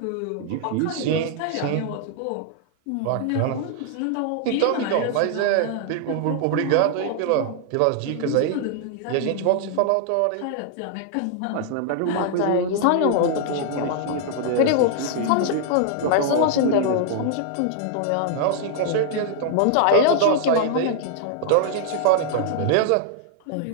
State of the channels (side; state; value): both; different; correlation 0.00